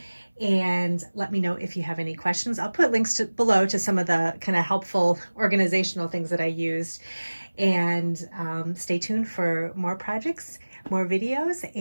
and let me know if you have any questions. I'll put links below to some of the kind of helpful organizational things that I used, and stay tuned for more projects, more videos,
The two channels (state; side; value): inverted; both; correlation -1.00